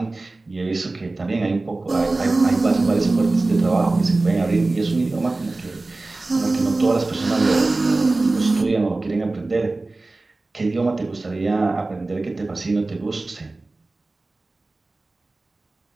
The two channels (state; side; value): quieter; left; 3.2 dB